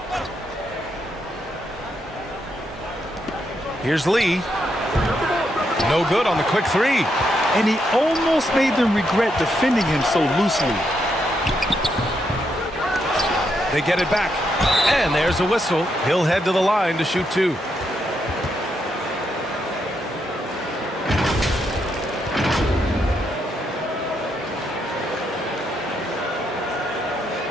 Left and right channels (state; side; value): normal; both; correlation 0.79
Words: Here's Lee. No good on the quick 3. And he almost made them regret defending him so loosely. They get it back. And there's a whistle. He'll head to the line to shoot 2.